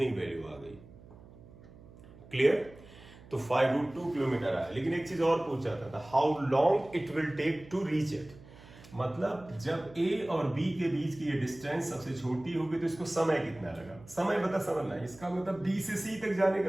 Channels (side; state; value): right; noise; hum, 21 dB below the sound